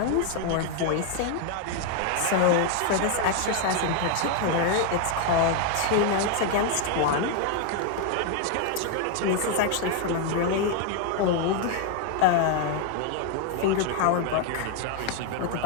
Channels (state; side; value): different; both; correlation 0.00